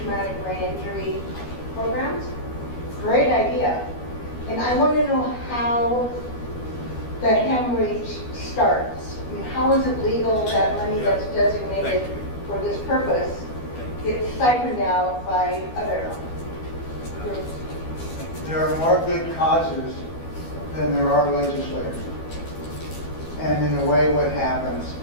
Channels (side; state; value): right; late; 12 ms